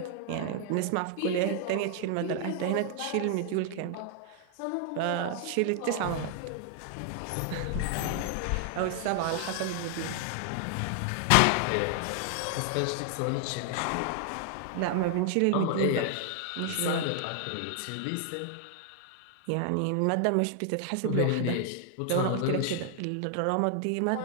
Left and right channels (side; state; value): both; different; correlation 0.00